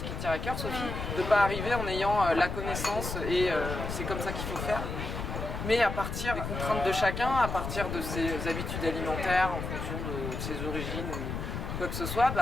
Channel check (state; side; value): noise; left; rumble, 5 dB below the sound